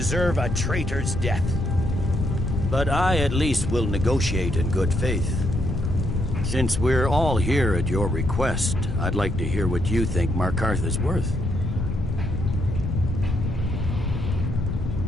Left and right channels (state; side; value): noise; left; rumble, 5 dB below the sound